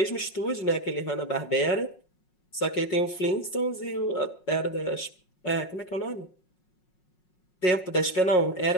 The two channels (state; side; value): late; right; 5.5 ms